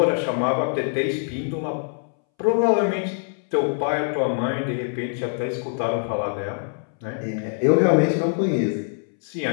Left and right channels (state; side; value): silent; right; 63 dB below the other